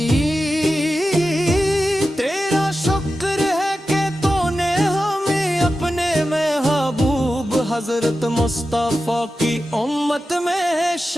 تیرا شکر ہے کہ تو نے ہمیں اپنے محبوب حضرت مصطفیٰ کی امت میں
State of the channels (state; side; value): normal; both; correlation 0.92